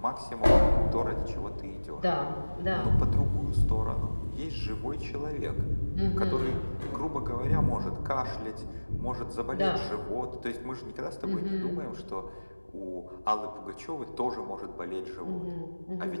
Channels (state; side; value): inverted; both; correlation -1.00